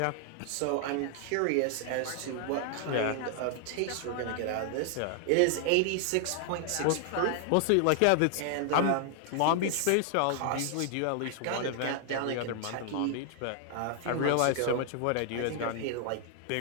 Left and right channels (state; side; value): different; both; correlation 0.00